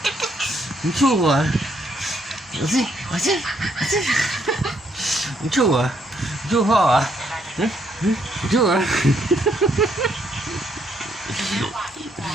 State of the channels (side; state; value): both; normal; correlation 0.72